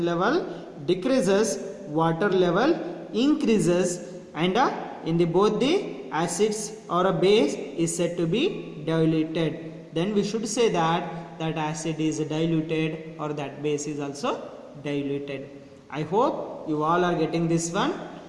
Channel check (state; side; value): identical; both; correlation 1.00